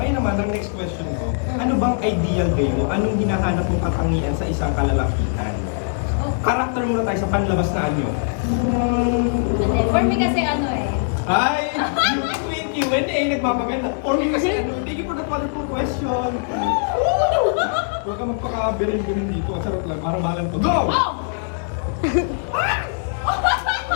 naman, ang next question ko, ano bang ideal day mo? Anong hinahanap mong katangian sa isang kalalakihan? Karakter muna tayo sa panlabas na anyo. For me kasi Ay! Q&A, nagmamaganda. For me kasi thank you for that wonderful question. Huwag ka magpaka-birin-birin dito. Sarap lang, para balan to. Go!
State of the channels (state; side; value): silent; right; digital silence